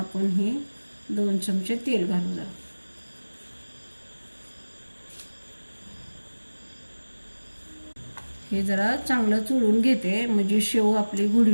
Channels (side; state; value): both; inverted; correlation -1.00